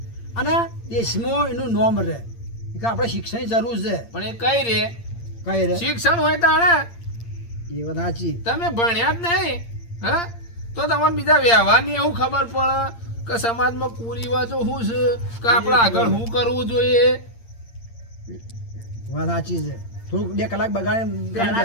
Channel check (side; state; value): right; late; 8.7 ms